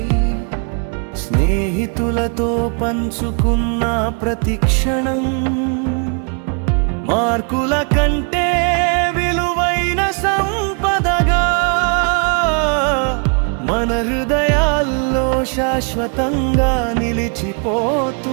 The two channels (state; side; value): quieter; left; 39.8 dB